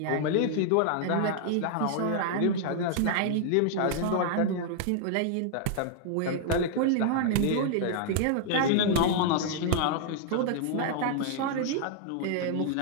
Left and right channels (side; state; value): both; different; correlation -0.01